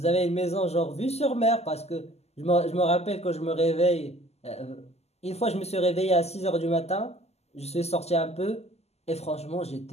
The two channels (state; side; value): late; right; 0.30 ms